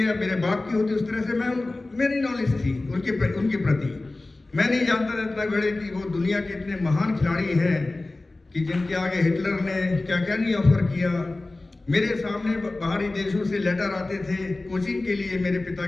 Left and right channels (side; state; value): right; quieter; 3.0 dB